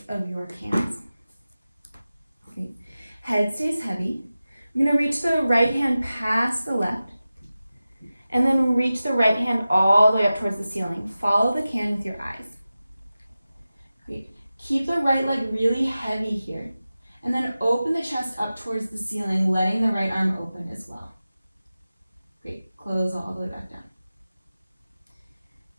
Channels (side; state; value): both; inverted; correlation -0.95